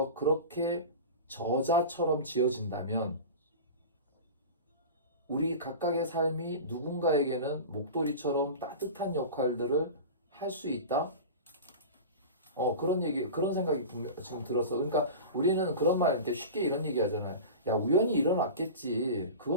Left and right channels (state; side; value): inverted; both; correlation -0.31